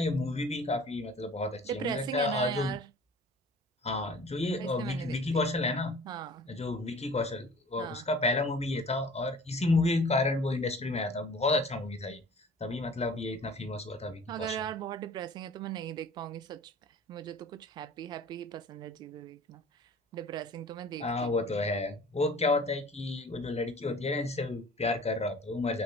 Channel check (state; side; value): normal; both; correlation 0.47